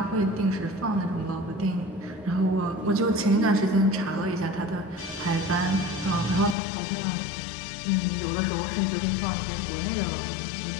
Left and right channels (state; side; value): drops out; right; at 6.6 s